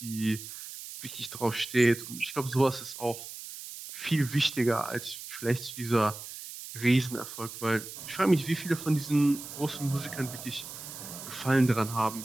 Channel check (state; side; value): noise; right; hiss, 11 dB below the sound